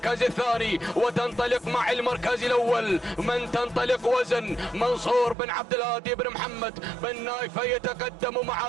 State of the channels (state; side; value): drops out; left; at 5.4 s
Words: الثاني وتنطلق مع المركز الأول. من تنطلق وزن منصور بن عبد الهادي بن محمد بن نايفة يتقدم مع